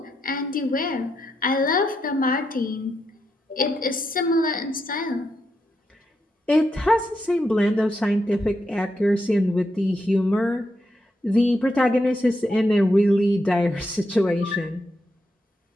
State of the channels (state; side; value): normal; both; correlation 0.83